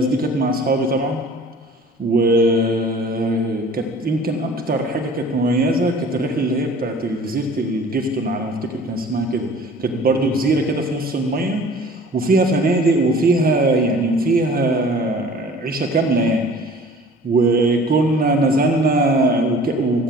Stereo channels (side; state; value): both; normal; correlation 0.47